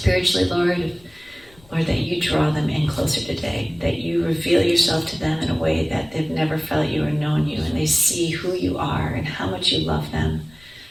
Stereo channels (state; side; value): noise; left; rumble, 27 dB below the sound